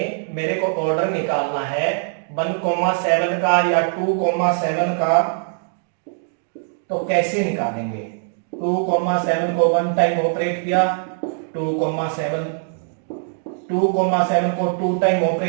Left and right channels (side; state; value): left; silent; digital silence